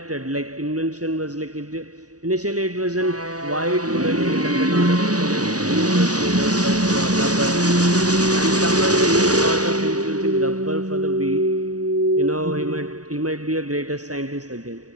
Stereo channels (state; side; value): late; left; 0.68 ms